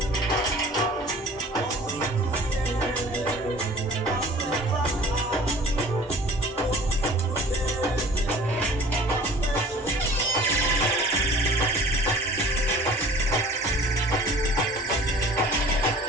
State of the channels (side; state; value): both; normal; correlation 0.46